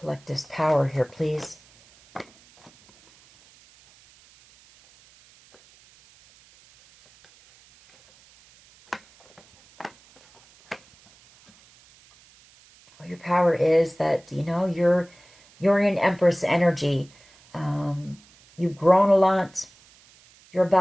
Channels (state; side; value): noise; right; hiss, 28 dB below the sound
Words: power here, please? Well, your power is that, you know, you're in Empress energy. You've grown a lot. You're